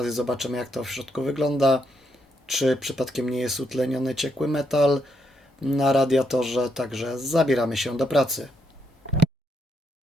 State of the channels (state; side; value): normal; both; correlation 0.78